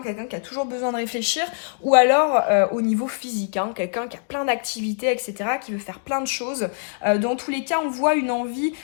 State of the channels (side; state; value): right; silent; digital silence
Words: quelqu'un qui a toujours besoin de réfléchir, ou alors au niveau physique, hein, quelqu'un qui a plein d'activités, etc., qui veut faire plein de choses. Dans tous les cas, on voit une envie